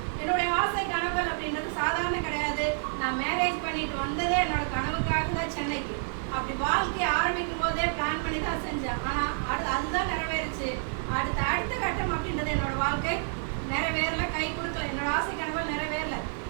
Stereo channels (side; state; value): left; silent; digital silence